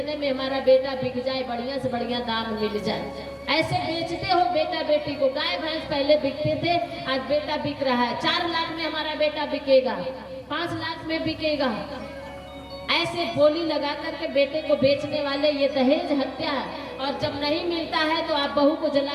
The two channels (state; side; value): identical; both; correlation 1.00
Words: में हमारा बेटा बिक जाए, बढ़िया से बढ़िया दाम मिल जाए। ऐसे बेचते हो बेटा बेटी को। गाय भैंस पहले बिकते थे, आज बेटा बिक रहा है। 4 लाख में हमारा बेटा बिकेगा, 5 लाख में बिकेगा। ऐसे बोली लगा करके बेटे को बेचने वाले ये दहेज हत्या है। और जब नहीं मिलता है तो आप बहू को जला